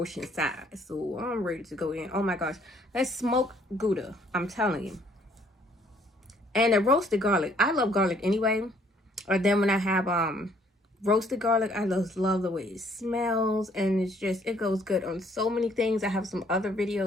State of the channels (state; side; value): normal; both; correlation 0.63